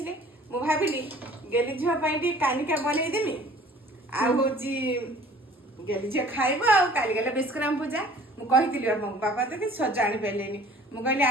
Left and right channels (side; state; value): both; normal; correlation 0.51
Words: ମୁଁ ଭାବିଲି ଗେଲି ଝିଅ ପାଇଁ ଟିକେ କାନିକା ବନେଇଦେମି। ଆଉ ହଉଛି ଗେଲି ଝିଅ ଖାଇବ। ଆଉ କାଲି ଗଲେ ବିଷ୍କରାମ ପୂଜା, ମୁଁ କହିଥିଲି ବାପାଙ୍କୁ, ବାପା ତ କିଛି ସଜ ଆଣିପାରିଲେନି। ମୁଁ କହିଲି